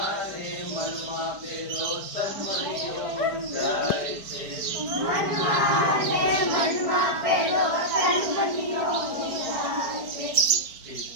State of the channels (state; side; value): late; left; 4.1 ms